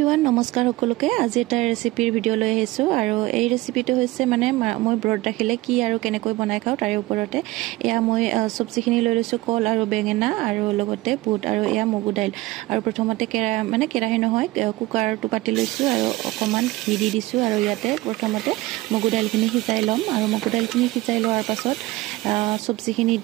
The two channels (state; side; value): quieter; left; 19.1 dB